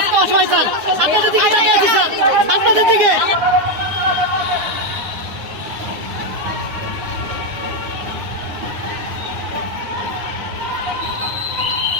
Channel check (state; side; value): late; left; 9.6 ms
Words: অসহায় স্যার আপনাদের দিকে তাকিয়ে আছি স্যার আপনাদের দিকে